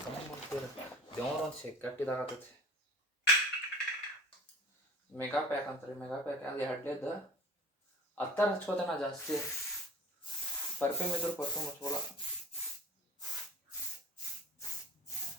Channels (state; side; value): normal; both; correlation 0.42